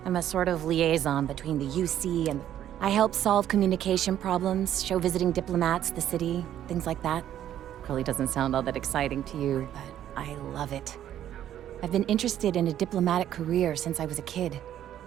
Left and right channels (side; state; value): left; quieter; 11.2 dB